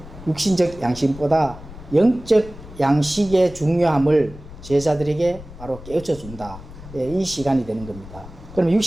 육신적 양식보다 영적 양식의 중요함을 제자들에게 바로 깨우쳐 준다. 이 시간이 되는 겁니다. 그러면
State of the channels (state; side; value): noise; left; rumble, 16 dB below the sound